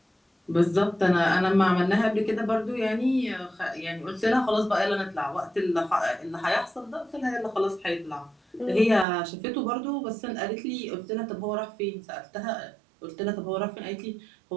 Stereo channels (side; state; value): left; drops out; at 9.1 s